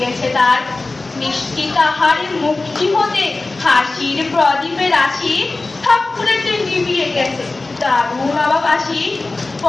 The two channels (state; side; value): quieter; right; 3.3 dB